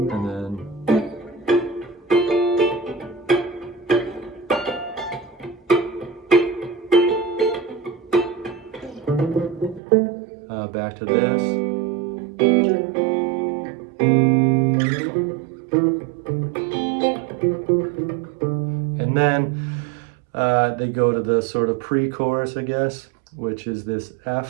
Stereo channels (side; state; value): left; drops out; at 9.8 s